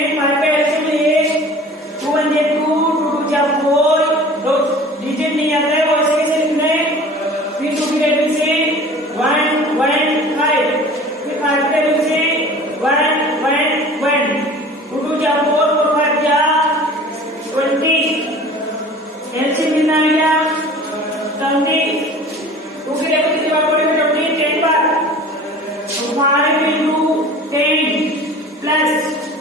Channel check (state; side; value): normal; both; correlation 0.43